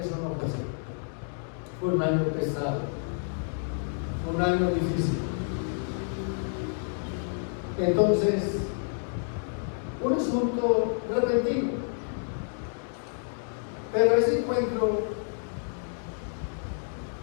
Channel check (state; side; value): silent; right; digital silence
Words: no fue así. Fue un año pesado, fue un año difícil. Entonces, un asunto repentino. Pero ese encuentro